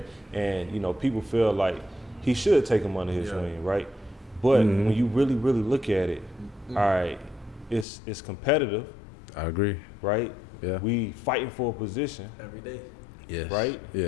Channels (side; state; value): right; drops out; at 7.9 s